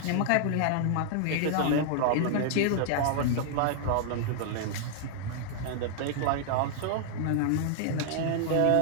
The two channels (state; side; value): different; both; correlation -0.01